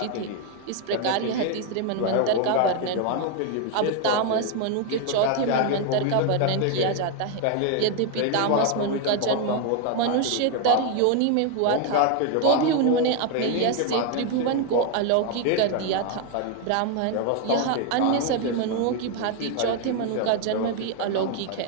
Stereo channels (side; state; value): both; different; correlation 0.01